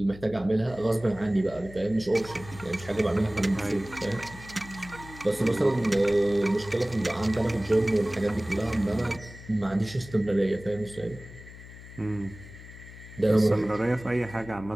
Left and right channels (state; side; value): noise; left; hum, 16 dB below the sound